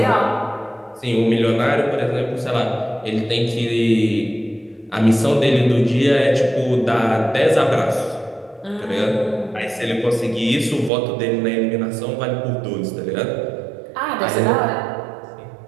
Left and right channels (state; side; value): drops out; left; at 10.9 s